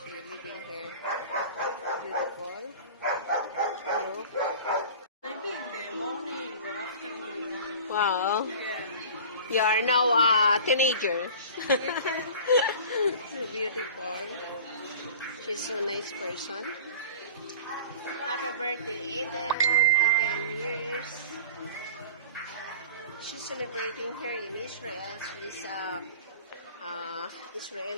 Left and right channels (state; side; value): inverted; both; correlation -0.39